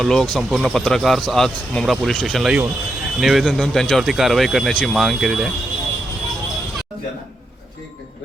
लोक संपूर्ण पत्रकार आज मुंब्रा पोलीस स्टेशनला येऊन निवेदन देऊन त्यांच्यावरती कारवाई करण्याची मागणी केलेली आहे.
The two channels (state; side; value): normal; both; correlation 0.83